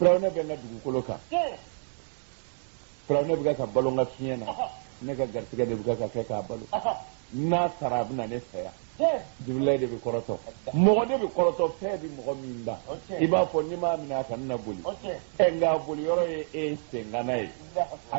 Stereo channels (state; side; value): silent; left; digital silence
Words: be na dugukolo kan Firawna be ka balonga fiena ne ka gartiga de buka ka kɛ k'a balo n'a sara a bɛna ne fɛ yan Jibrila de bɛ kɔrɔtɔ mɔgɔ de bɛ kɔrɔtɔ fɛn bɛ mɔgɔ min da i b'a fɔ n'i m'a minɛ a kan na boli nka boli yɔrɔ ye e sengana ye